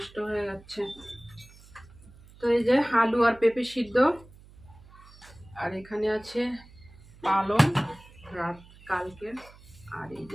হয়ে যাচ্ছে। তো এই যে আলু আর পেঁপে সিদ্ধ, আর এখানে আছে পালং রাত কালকে, আর এই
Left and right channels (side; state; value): right; noise; hum, 23 dB below the sound